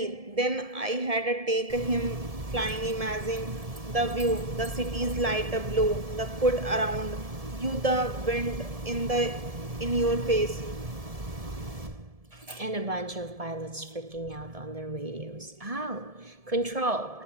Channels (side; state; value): left; late; 1.7 ms